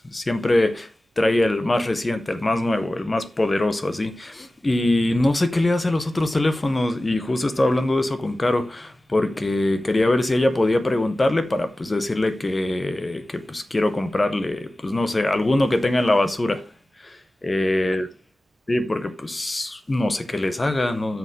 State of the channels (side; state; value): both; normal; correlation 0.96